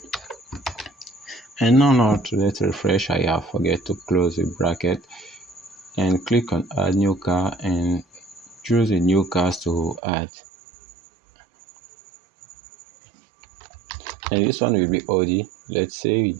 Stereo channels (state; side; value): drops out; left; at 10.0 s